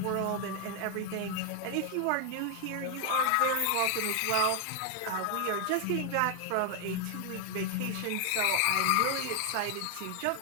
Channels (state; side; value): different; both; correlation 0.00